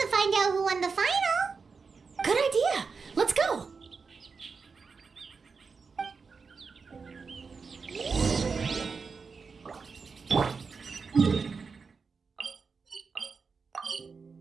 to find out who won the final. Good idea. Let's go.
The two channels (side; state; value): left; quieter; 5.0 dB